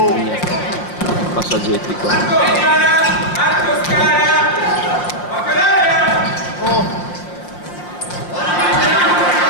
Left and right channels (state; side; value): late; right; 5.7 ms